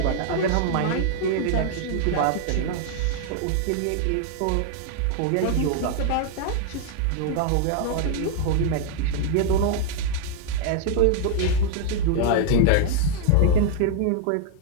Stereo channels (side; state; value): both; different; correlation 0.00